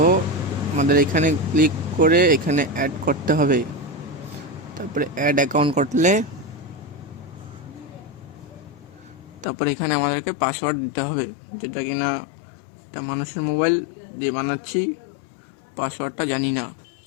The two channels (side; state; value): right; drops out; at 9.5 s